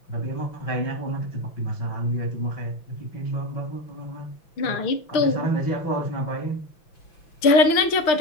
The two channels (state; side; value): late; right; 5.9 ms